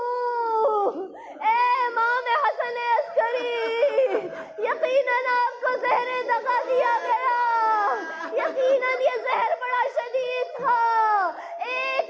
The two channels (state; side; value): identical; both; correlation 1.00